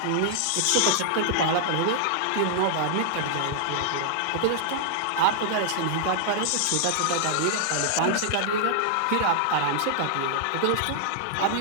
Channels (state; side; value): different; both; correlation -0.01